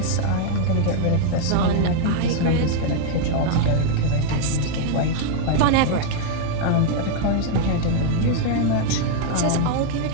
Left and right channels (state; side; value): different; both; correlation 0.00